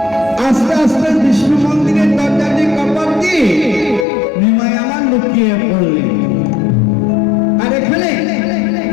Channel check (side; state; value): right; drops out; at 4.0 s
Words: আস্তে আস্তে বিষ্ণু মন্দিরের দরজা দিয়ে কপাট দিয়ে নিমাই আমার লুকিয়ে পড়লেন। আর এখানে